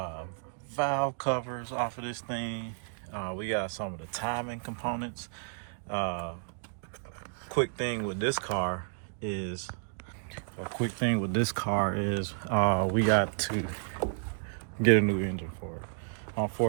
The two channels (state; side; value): silent; left; digital silence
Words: valve covers off of this thing. We got some of the timing components. Quick thing with this car is we got to get a new engine for it.